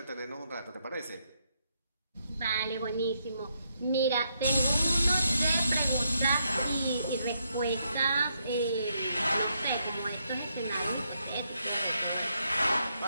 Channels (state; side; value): inverted; both; correlation -0.78